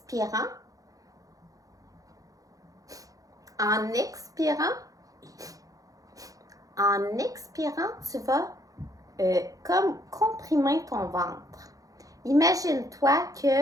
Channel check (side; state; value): left; late; 0.17 ms